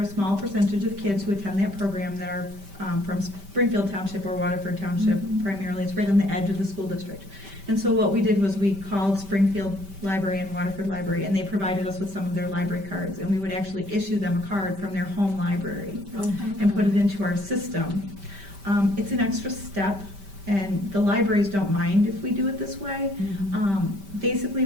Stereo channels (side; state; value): left; late; 5.1 ms